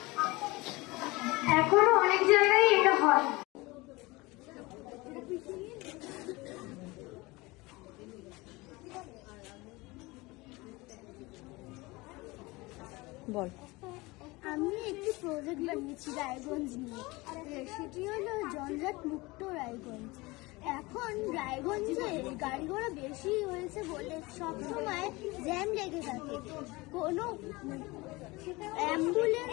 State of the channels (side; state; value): right; quieter; 22.8 dB